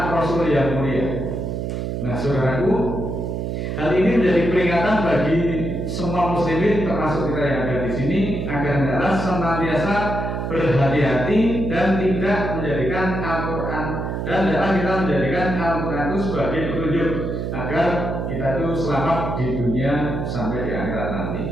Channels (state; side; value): noise; right; hum, 3 dB below the sound